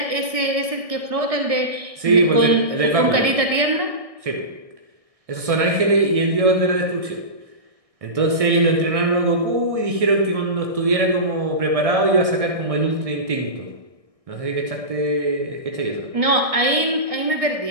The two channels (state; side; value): late; left; 1.6 ms